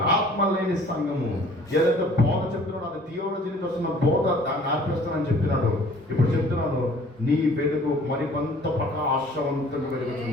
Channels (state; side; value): normal; both; correlation 0.52